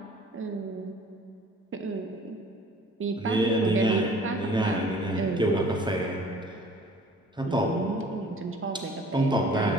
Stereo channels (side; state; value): both; normal; correlation 0.51